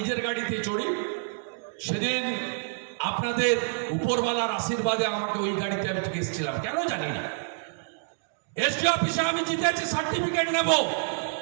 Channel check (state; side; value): silent; left; digital silence